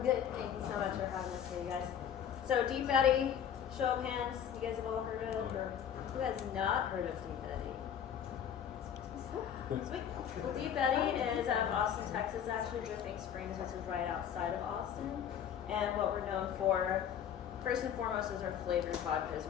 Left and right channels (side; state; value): right; quieter; 8.9 dB